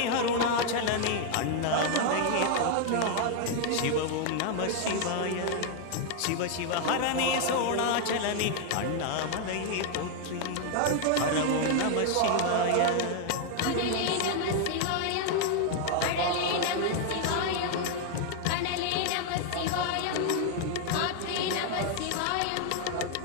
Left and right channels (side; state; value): both; different; correlation 0.00